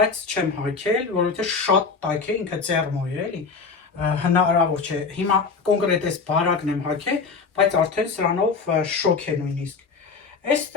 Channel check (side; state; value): right; quieter; 4.9 dB